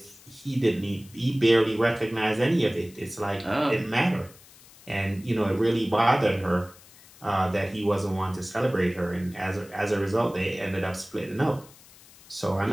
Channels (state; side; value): noise; left; hiss, 23 dB below the sound